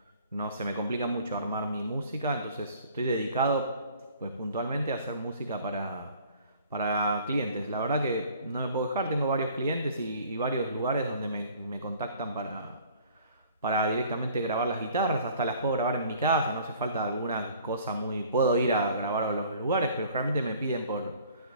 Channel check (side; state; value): both; inverted; correlation -0.53